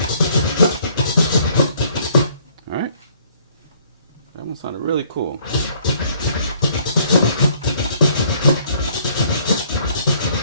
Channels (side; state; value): both; inverted; correlation -0.63